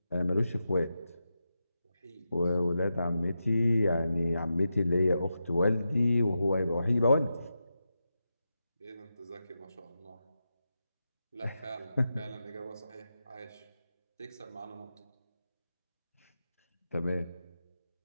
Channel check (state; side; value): inverted; both; correlation -0.89